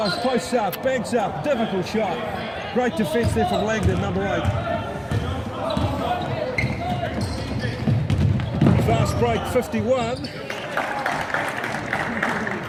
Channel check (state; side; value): identical; both; correlation 1.00